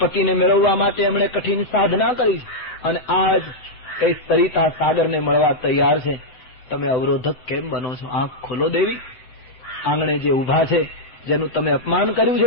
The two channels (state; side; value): late; right; 7.6 ms